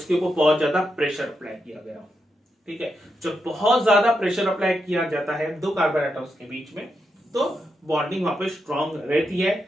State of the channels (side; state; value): both; normal; correlation 0.85